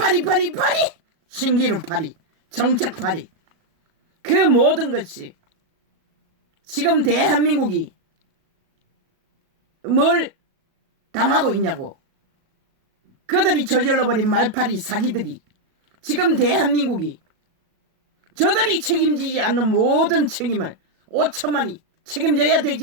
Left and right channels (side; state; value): left; late; 37 ms